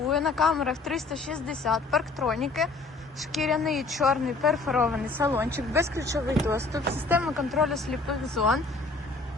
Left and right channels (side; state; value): right; quieter; 3.6 dB